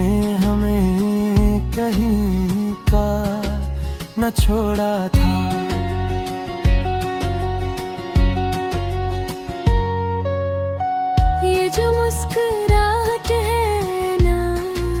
हमें कहीं का न छोड़ा था। ये जो मुस्कुराहट है ना,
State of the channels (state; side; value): identical; both; correlation 1.00